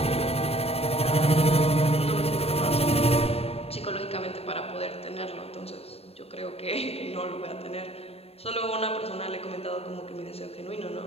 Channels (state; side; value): late; right; 0.29 ms